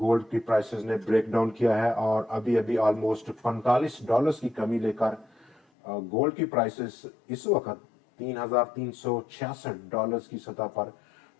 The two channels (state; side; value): drops out; right; at 5.6 s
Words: की प्राइसेस ने ब्रेकडाउन किया है और अभी अभी ऑलमोस्ट $45 की कमी लेकर गोल्ड की प्राइसेस इस वक्त $3,366 की सतह पर